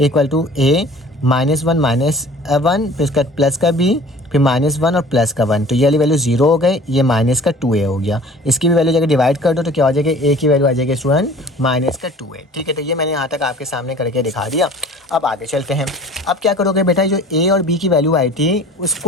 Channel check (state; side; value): normal; both; correlation 0.46